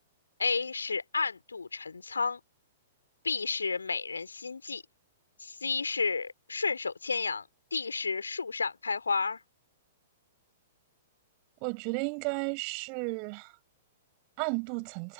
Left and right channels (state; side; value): inverted; both; correlation -0.72